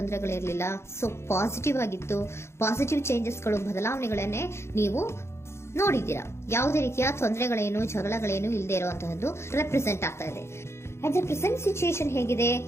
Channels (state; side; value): late; right; 0.13 ms